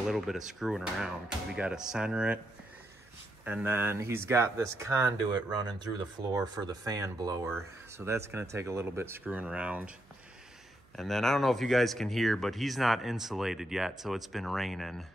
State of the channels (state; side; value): noise; right; hum, 30 dB below the sound